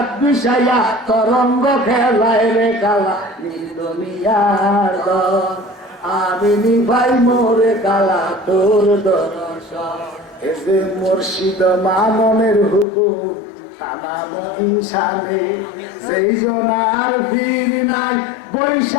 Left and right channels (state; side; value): drops out; right; at 12.9 s